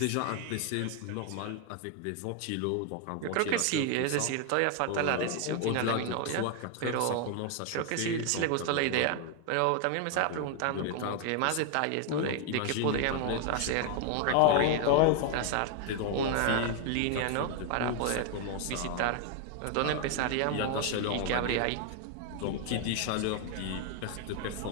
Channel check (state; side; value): different; both; correlation 0.00